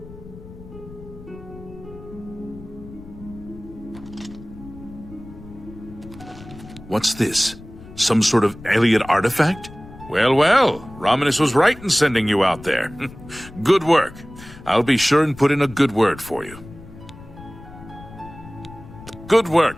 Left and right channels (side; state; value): left; noise; rumble, 17 dB below the sound